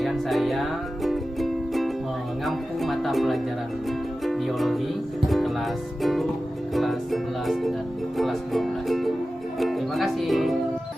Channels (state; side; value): normal; both; correlation 0.95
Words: saya mengampu mata pelajaran biologi kelas 10, kelas 11, dan kelas 12. Terima kasih.